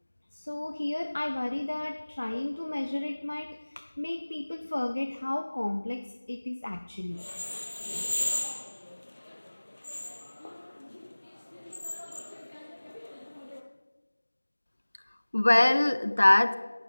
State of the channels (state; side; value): inverted; both; correlation -1.00